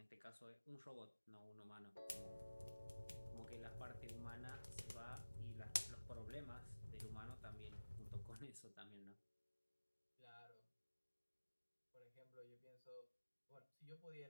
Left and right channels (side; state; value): both; inverted; correlation -1.00